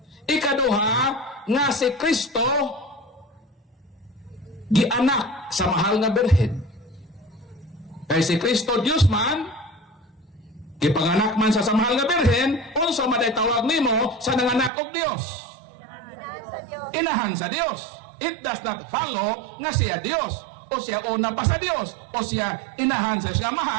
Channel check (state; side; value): drops out; left; at 14.7 s